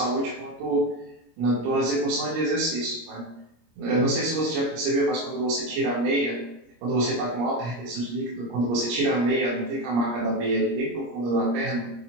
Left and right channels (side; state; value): left; late; 25 ms